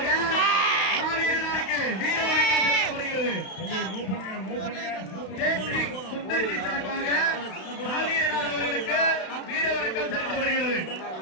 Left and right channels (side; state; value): right; late; 32 ms